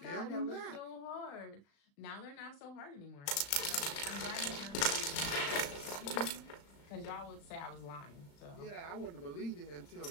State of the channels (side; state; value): right; late; 35 ms